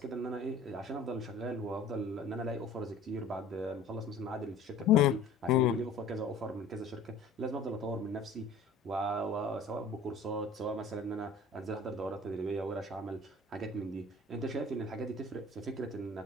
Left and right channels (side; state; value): right; quieter; 3.3 dB